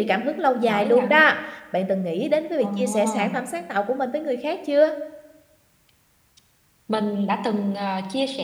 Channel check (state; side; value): identical; both; correlation 1.00